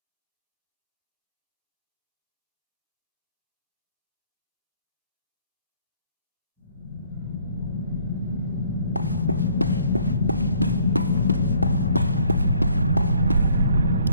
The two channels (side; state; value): both; inverted; correlation -0.61